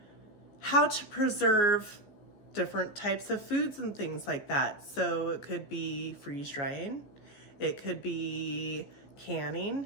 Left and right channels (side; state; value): right; late; 15 ms